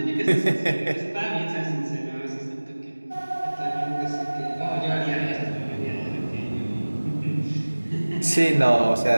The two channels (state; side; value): inverted; both; correlation -1.00